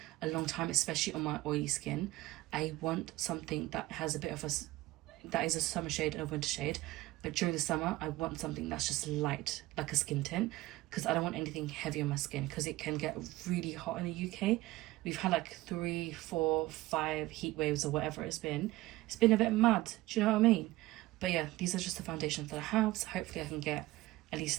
a long time, especially on my oily skin. I want something that has a bit of that is a summer shade and a winter shade, but during the summer I want something that's just light, like a skin tint, because I don't want anything heavy on my skin because it can get really hot in the UK. We've had like 3, 4, 5 heat waves or whatever it's been. It's been a bit mad, do you know what I mean? But yeah, these are just the foundations that I have, so hopefully I can get at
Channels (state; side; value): quieter; left; 18.3 dB